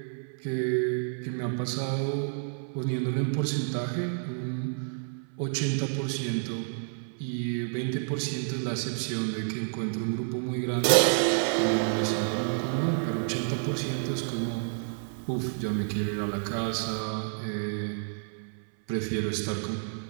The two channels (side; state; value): left; silent; 58 dB below the other